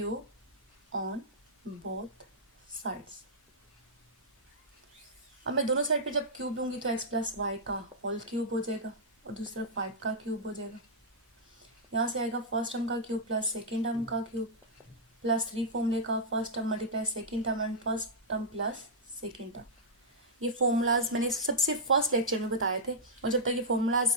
on both sides. अब मैं दोनों साइड पे जब क्यूब लूँगी तो x प्लस वाई का होल क्यूब हो जाएगा और दूसरा 5 का क्यूब हो जाएगा। यहाँ से आएगा फर्स्ट टर्म का क्यूब प्लस सेकेंड टर्म का क्यूब प्लस 3 फॉर्मूले का first term multiply second term and first term plus second term. ये फॉर्मूलाज मैंने सबसे फर्स्ट लेक्चर में बताए थे और जब तक ये फॉर्मूलाज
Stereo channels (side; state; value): both; normal; correlation -0.10